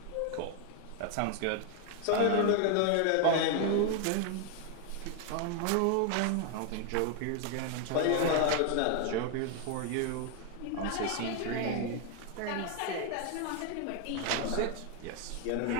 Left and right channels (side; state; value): both; different; correlation 0.00